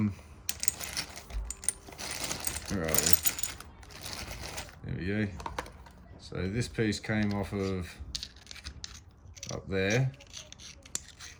Where are we? There we go. So this piece came off of up there.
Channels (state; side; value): identical; both; correlation 1.00